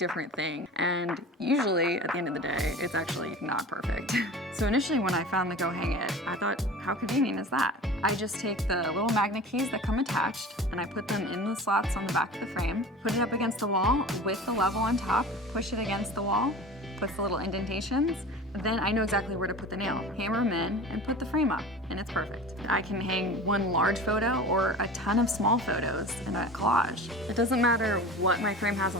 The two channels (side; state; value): both; normal; correlation 0.36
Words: thing. And usually at the end of the day, it's actually not perfect. So initially when I found the Go Hang It, I thought, how convenient is that? I just take the little magnet keys that come attached and I put them in the slots on the back of the frame, put it up against the wall with the level on top, push it against the wall, puts the little indentations, then I know exactly where to put the nail. Hammer them in and put the frame up, and it's perfect. I can hang one large photo or a ton of small photos in a collage. It doesn't matter what my frame has